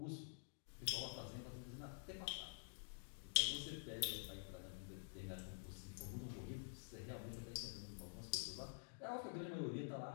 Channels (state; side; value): silent; right; digital silence